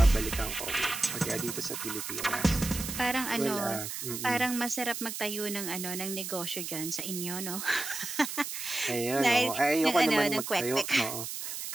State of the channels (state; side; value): noise; right; hiss, 6 dB below the sound